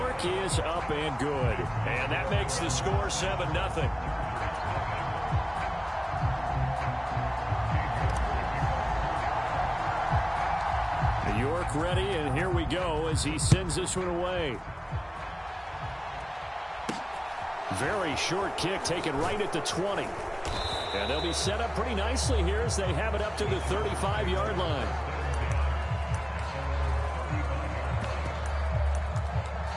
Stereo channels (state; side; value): identical; both; correlation 1.00